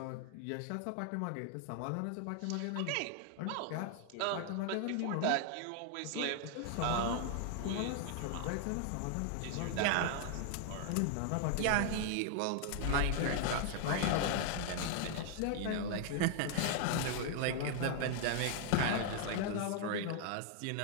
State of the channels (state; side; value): different; both; correlation 0.00